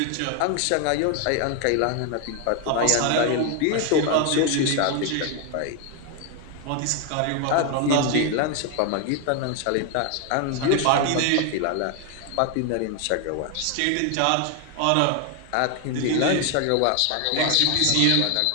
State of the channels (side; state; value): both; different; correlation 0.01